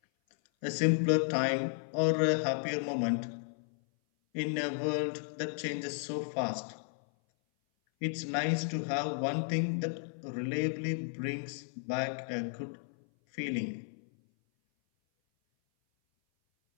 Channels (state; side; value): silent; right; 55 dB below the other